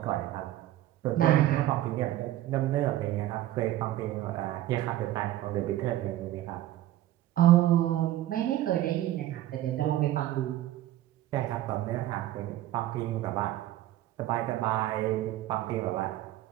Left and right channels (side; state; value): left; quieter; 14.1 dB